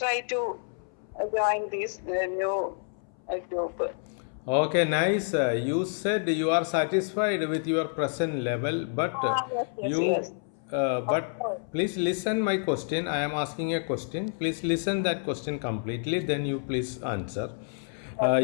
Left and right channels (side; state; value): right; silent; 59 dB below the other